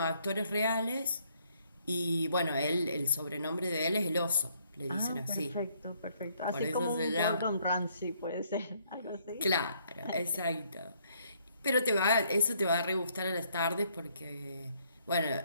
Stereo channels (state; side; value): inverted; both; correlation -0.68